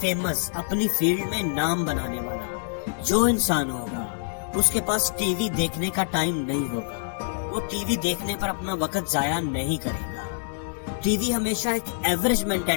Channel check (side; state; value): right; silent; digital silence